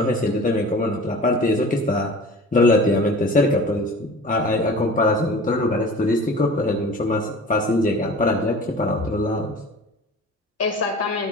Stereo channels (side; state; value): both; normal; correlation 0.40